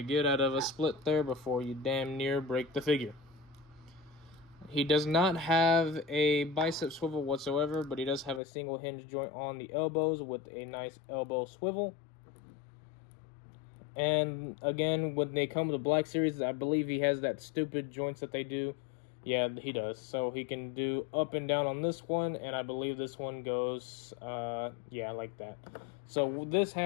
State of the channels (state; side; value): drops out; right; at 8.4 s